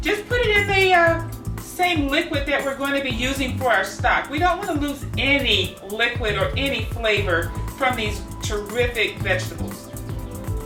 just put it in the same liquid that we're going to be using for our stock. We don't want to lose any liquid or any flavor from these terrific vegetables.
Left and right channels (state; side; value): identical; both; correlation 1.00